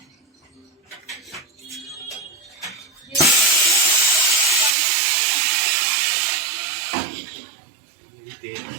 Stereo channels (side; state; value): left; drops out; at 4.8 s